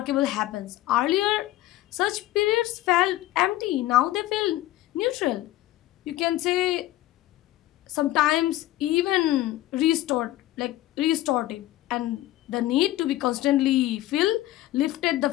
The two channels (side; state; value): right; quieter; 15.6 dB